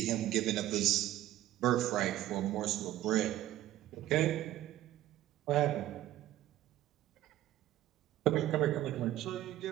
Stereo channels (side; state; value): left; quieter; 14.0 dB